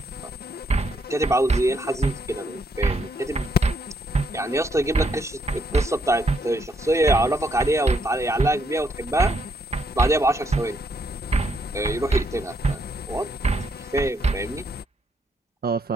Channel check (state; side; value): normal; both; correlation 0.74